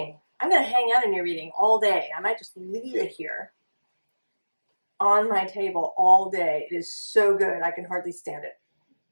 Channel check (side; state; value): both; inverted; correlation -1.00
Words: I'm going to hang out in your reading all day. I might just leave it here on my table all day. It is so good. I can hardly stand it.